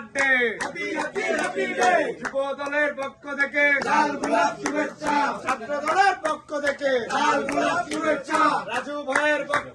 happy happy happy day, যুব দলের পক্ষ থেকে লাল গোলাপ শুভেচ্ছা, ছাত্র দলের পক্ষ থেকে লাল গোলাপ শুভেচ্ছা, রাজু ভাইয়ের পক্ষ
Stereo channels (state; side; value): identical; both; correlation 1.00